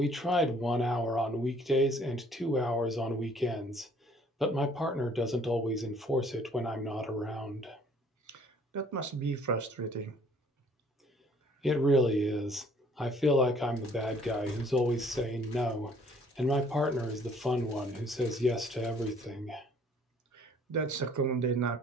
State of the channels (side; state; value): both; normal; correlation 0.59